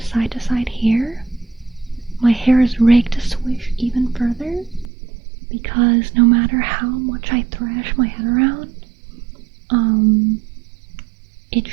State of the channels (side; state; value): left; drops out; at 4.9 s